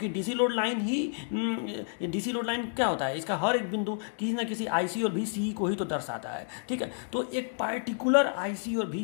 DC लोड लाइन क्या होता है, इसका हर एक बिंदु किसी न किसी IC और VCE को ही तो दर्शाता है, ठीक है। तो एक पार्टिकुलर IC और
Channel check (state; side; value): silent; right; digital silence